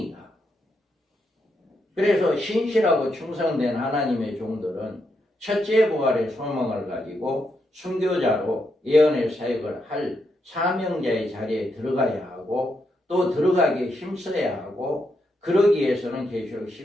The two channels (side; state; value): both; normal; correlation 0.81